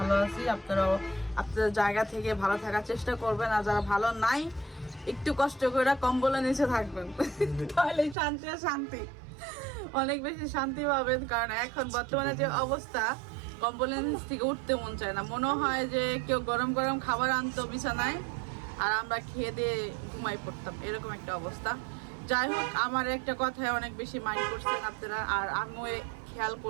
আছি। আপনারাও আপনাদের জায়গা থেকে ভালো থাকার চেষ্টা করবেন, আর যারা ভালো নাই একটু কষ্ট করে কম্বলের নিচে থাকবেন, তাহলে শান্তি আর শান্তি, অনেক বেশি শান্তি পাবেন। কারণ এখন বর্তমানে যে অবস্থা, কম্বলের নিচ থেকে উঠতে মন চায় না। মনে হয় যে কেউ গরম গরম খাবার আনতো বিছানায় আর আমরা খেয়ে দিয়ে ঘুমাই পড়তাম, এরকম একটা অবস্থা। যাই হোক, আমার একটা কথায় অনেক বেশি মাইন্ড করছেন আপনারা, আর আমিও খেয়াল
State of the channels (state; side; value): drops out; left; at 8.2 s